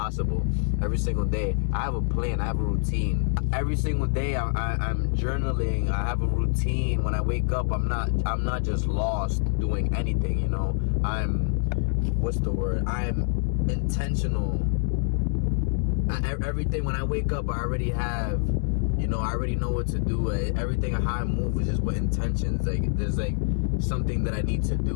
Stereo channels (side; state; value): right; silent; 61 dB below the other